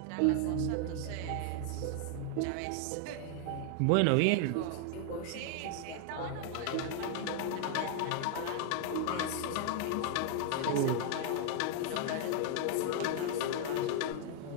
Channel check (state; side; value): different; both; correlation 0.00